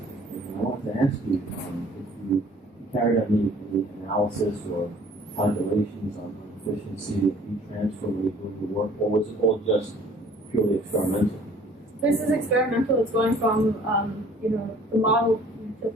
And I wanted to ask you if you carried out any analysis or calculations on the efficiency of heat transfer when you're doing the work, or was it all just purely experimental? This is experimental. It's going from the model to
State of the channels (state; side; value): normal; both; correlation 0.53